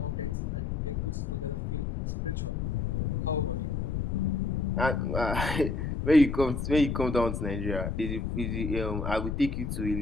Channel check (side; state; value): left; noise; rumble, 3 dB below the sound